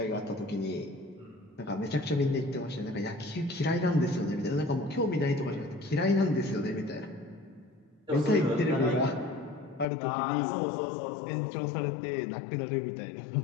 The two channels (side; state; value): right; drops out; at 9.9 s